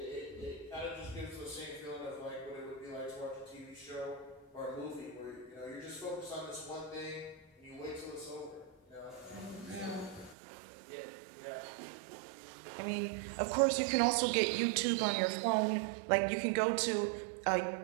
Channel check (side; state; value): left; drops out; at 10.4 s